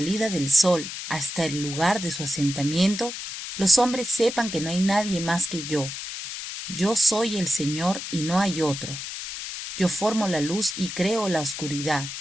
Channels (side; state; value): left; noise; hiss, 8 dB below the sound